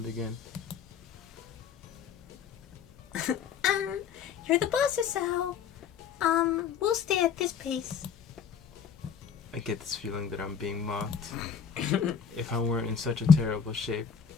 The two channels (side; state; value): right; quieter; 7.2 dB